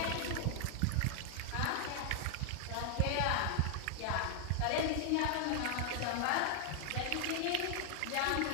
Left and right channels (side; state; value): both; different; correlation 0.00